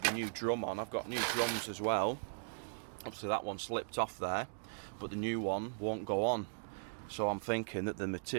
the new drum on. I've got new drums as well. Obviously that one slipped off there, but the new one won't go on. So I'm thinking that the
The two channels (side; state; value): left; silent; digital silence